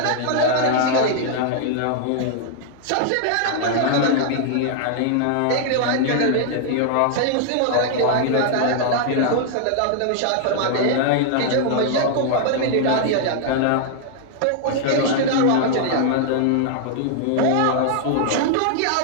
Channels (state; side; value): different; both; correlation -0.01